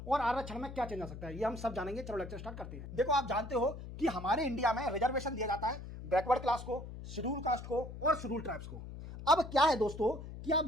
और आरक्षण में क्या चेंज आ सकता है, ये हम सब जानेंगे। चलो लेक्चर स्टार्ट करते हैं। देखो, आप जानते हो कि हमारे इंडिया में रिजर्वेशन दिया जाता है बैकवर्ड क्लास को, शेड्यूल कास्ट को और शेड्यूल ट्राइब्स को। अब क्या है दोस्तों कि आप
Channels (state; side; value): noise; left; hum, 11 dB below the sound